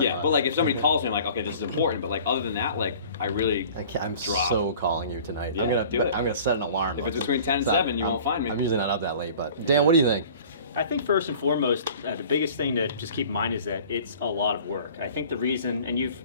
Yeah, but like if somebody calls me, I'm like, okay, this is important. But like other than that, like I'm drop. so calling you tonight. Yeah, I'm gonna set an alarm. If it's between 10 and 7, you won't find me. I'm usually not up that late, but Dan, what do you think? I think first and foremost, the biggest thing to just keep in mind is that it's a lot of work. I think the reason, and you've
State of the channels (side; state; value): both; inverted; correlation -0.47